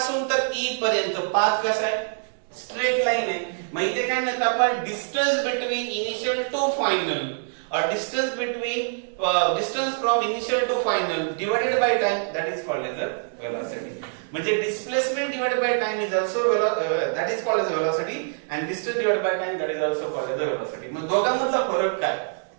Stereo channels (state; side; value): silent; left; 61 dB below the other